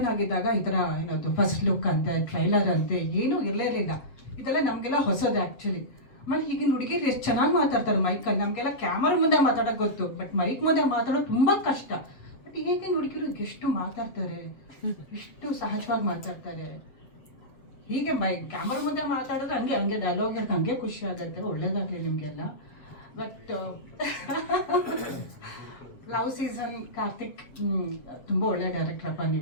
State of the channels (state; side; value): late; right; 7.7 ms